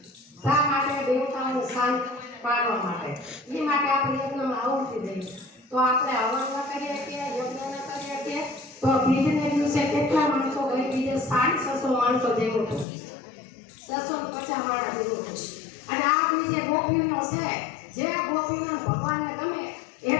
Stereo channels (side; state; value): right; drops out; at 12.9 s